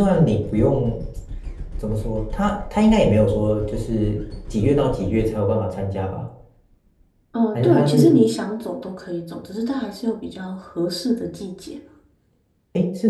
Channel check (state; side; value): identical; both; correlation 1.00